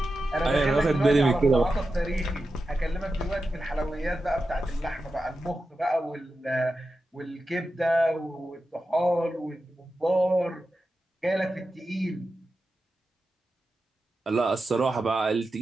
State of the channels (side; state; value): both; normal; correlation 0.91